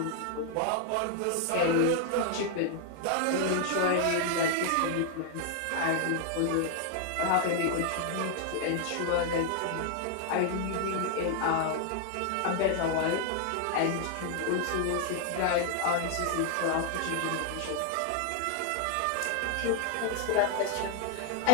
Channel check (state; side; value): different; both; correlation 0.00